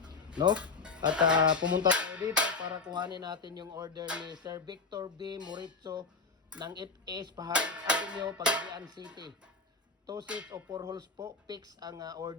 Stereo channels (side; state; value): right; quieter; 4.5 dB